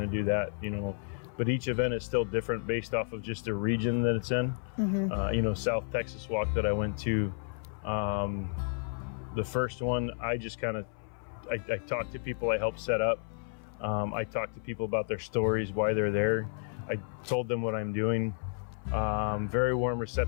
to do that, you know. But each event is still different based off of just the region that it's in. Mm-hmm. You know, South Texas walk that I went to, the first one, I just kind of, I talked to people I helped set up. I talked to people about their stories, why they're there. I told them what I'm doing. Very warm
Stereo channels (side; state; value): right; silent; 57 dB below the other